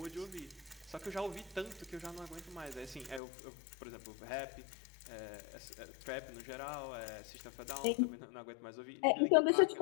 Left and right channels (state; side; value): drops out; right; at 3.2 s